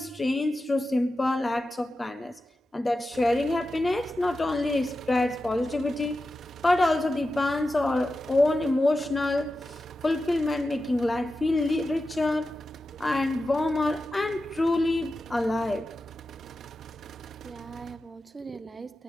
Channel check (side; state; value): both; normal; correlation 0.92